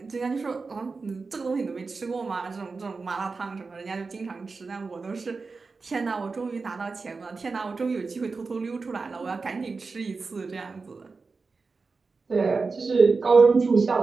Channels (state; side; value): quieter; left; 4.3 dB